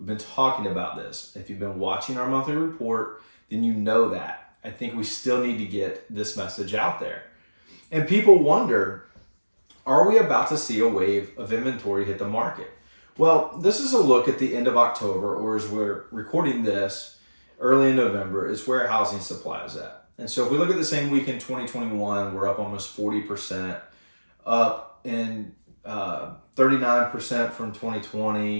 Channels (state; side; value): inverted; both; correlation -1.00